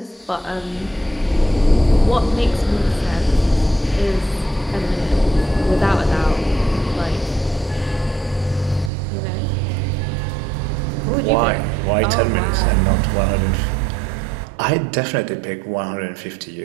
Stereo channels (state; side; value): drops out; left; at 8.9 s